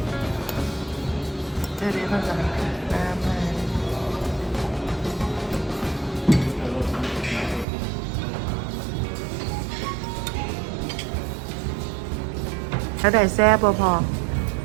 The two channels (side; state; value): left; drops out; at 7.7 s